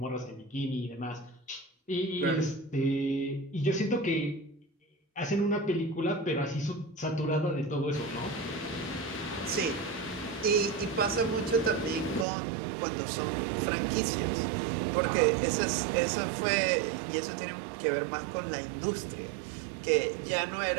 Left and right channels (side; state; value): left; drops out; at 12.2 s